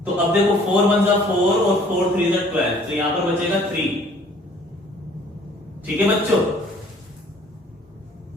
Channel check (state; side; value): normal; both; correlation 0.56